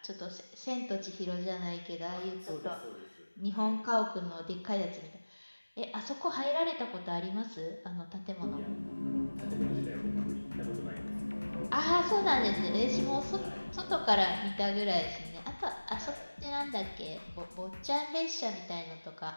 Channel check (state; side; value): inverted; both; correlation -1.00